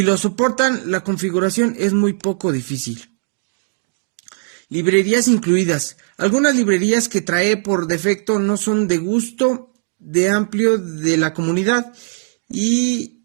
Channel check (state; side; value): silent; left; digital silence